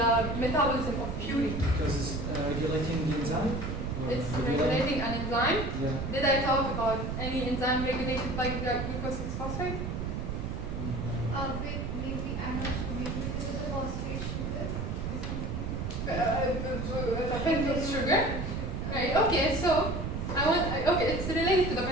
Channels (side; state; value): right; noise; rumble, 3 dB below the sound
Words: metabolism of purine? Because it's regulating the enzyme? It's regulating an enzyme. Yeah. Did I talk about any enzyme regulated by glucose 6-phosphate? Maybe, I'm not sure, maybe because of the phosphate sugar. The pentose sugar. Right, okay, so it's related to the